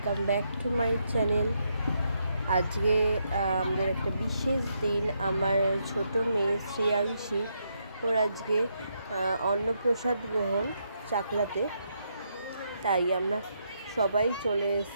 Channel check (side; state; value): both; inverted; correlation -0.78